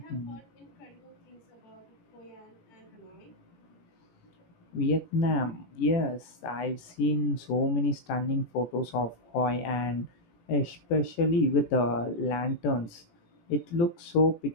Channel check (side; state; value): right; late; 18 ms